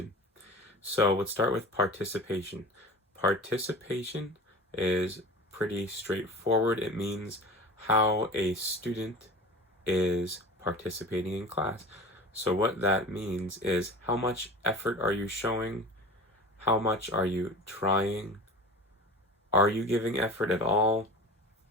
So let's start with participation. Participation is pretty straightforward. It means how a student is participating in class. So what that means is how much effort are you showing? How much are you trying? Are you giving effort at all?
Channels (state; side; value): normal; both; correlation 0.35